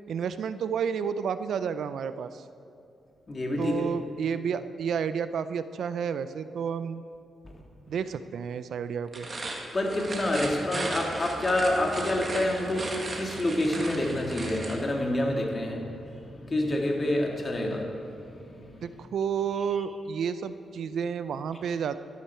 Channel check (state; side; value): normal; both; correlation 0.82